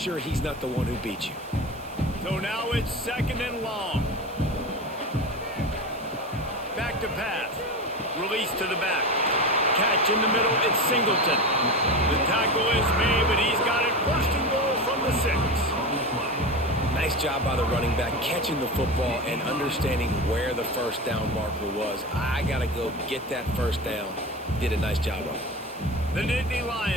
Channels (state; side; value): noise; right; hiss, 23 dB below the sound